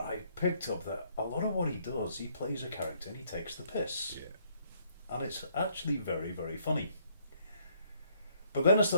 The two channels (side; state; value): both; inverted; correlation -0.68